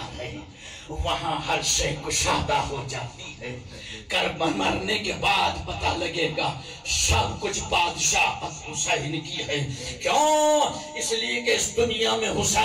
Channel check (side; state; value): both; identical; correlation 1.00